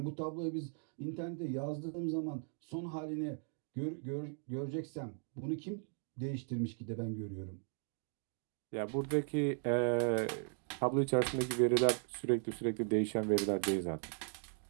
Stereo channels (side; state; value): left; silent; 53 dB below the other